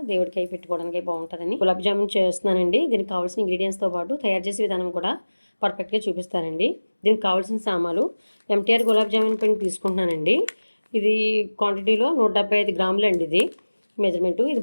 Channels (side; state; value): both; inverted; correlation -1.00